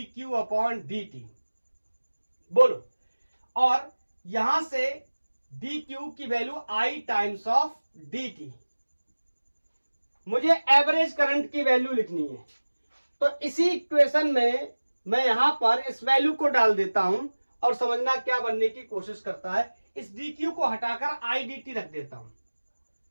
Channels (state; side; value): inverted; both; correlation -1.00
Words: बोलो, और यहां से dq की value I times of dt। मुझे एवरेज करंट की वैल्यू लिखनी है, तो इसी इक्वेशन में मैं यहां पर इस वैल्यू को डाल देता हूं और समझना क्या बनने की कोशिश करता है। इस dq को हटाकर I dt रख देता हूं।